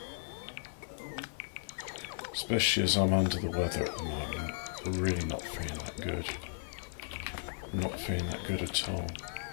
Especially as I'm under the weather at the moment. I'm really not feeling that good. I'm not feeling that good at all.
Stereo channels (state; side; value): silent; right; digital silence